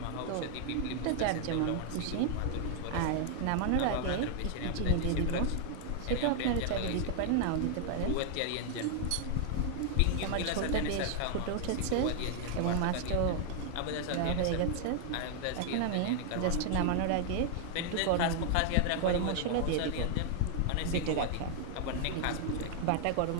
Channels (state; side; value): different; both; correlation 0.00